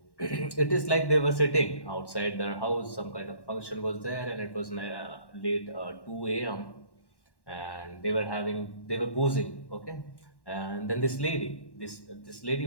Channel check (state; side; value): late; right; 1.1 ms